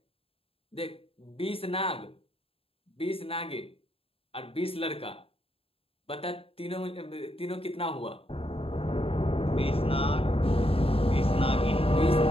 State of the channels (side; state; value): right; late; 0.27 ms